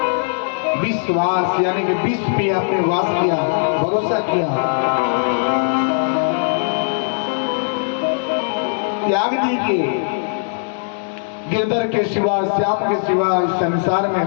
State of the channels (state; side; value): silent; right; digital silence